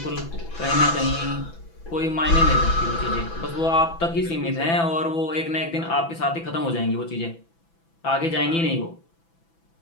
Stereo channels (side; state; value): right; late; 6.0 ms